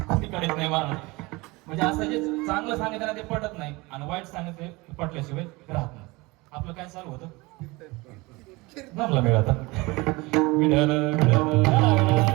कोणी काढत नाही मला. म्हणजे असं जे चांगलं सांगितलं ना ते पटत नाही आणि वाईट सांगितलं पटल्याशिवाय राहत नाही. आपलं काय चालू होतं? जमला वेळ आता.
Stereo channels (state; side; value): quieter; left; 23.5 dB